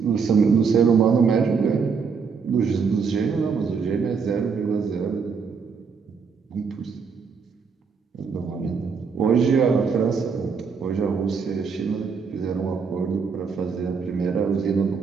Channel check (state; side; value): quieter; left; 5.7 dB